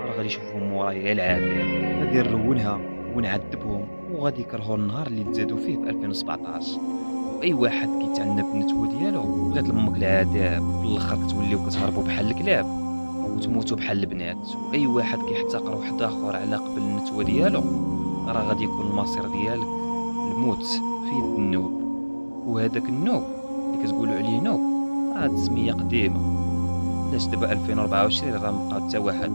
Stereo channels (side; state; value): both; inverted; correlation -1.00